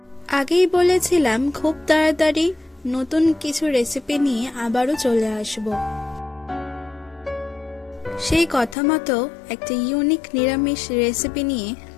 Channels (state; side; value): drops out; right; at 8.8 s